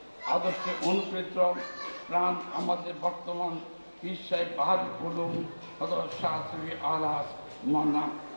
আদর্শে অনুপ্রেরিত প্রাণ আমাদের বর্তমান পীর সাহেব বাহাদুর উলুম হযরত শাহ সুফি আলহাজ মাওলানা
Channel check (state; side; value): inverted; both; correlation -1.00